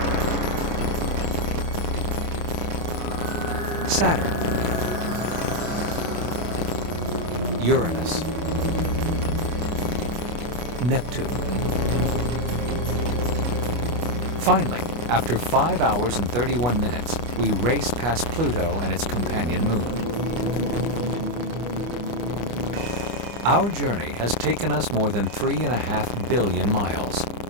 Saturn, Uranus, Neptune. Finally, after 5 hours and 31 minutes, we race past Pluto and its companion moon. Our journey has taken us more than 3.5 billion miles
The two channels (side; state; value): left; late; 25 ms